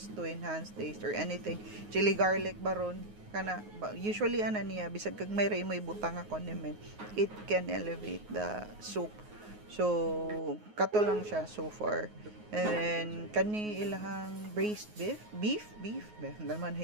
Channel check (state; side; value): late; left; 9.5 ms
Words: to enhance taste or anything, chili garlic baron kana usually ana niya bisag kag may mo ibutang nga condiment, it can elevate the soup. So kato lang siya so far. And then kani ilahang braised beef naman